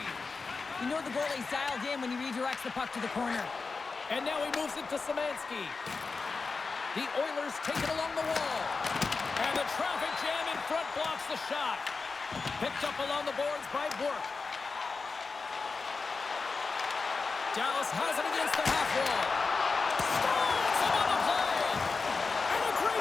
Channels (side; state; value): right; quieter; 4.4 dB